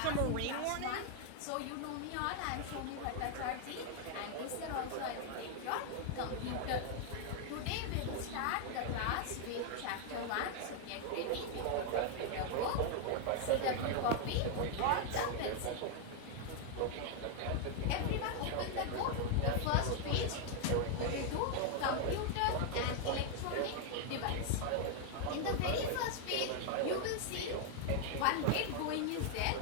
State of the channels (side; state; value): both; different; correlation 0.00